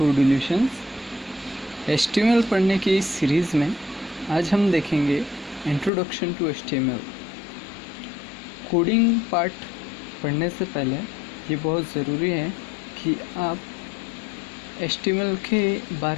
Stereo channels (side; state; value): right; drops out; at 5.9 s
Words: HTML पढ़ने की इस सीरीज़ में आज हम देखेंगे introduction to HTML। Coding part पढ़ने से पहले ये बहुत ज़रूरी है कि आप HTML के